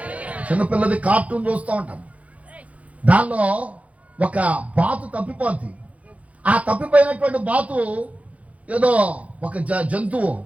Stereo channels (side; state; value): left; late; 0.066 ms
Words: చిన్నపిల్లది కార్టూన్ చూస్తూ ఉంటాను. దానిలో ఒక బాతు తప్పిపోద్ది. ఆ తప్పిపోయినటువంటి బాతు ఏదో ఒక జంతువు,